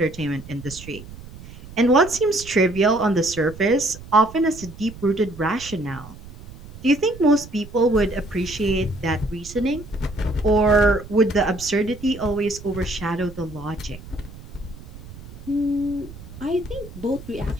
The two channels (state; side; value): noise; right; rumble, 16 dB below the sound